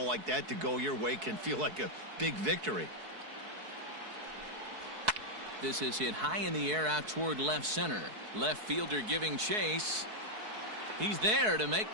like that to go your way can feel like a big victory. This is hit high in the air out toward left center. Left fielder giving chase. He's there to make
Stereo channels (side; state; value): left; late; 4.7 ms